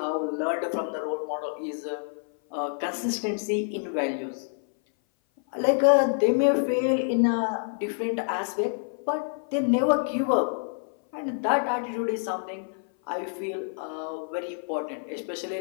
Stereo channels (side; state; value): right; silent; 57 dB below the other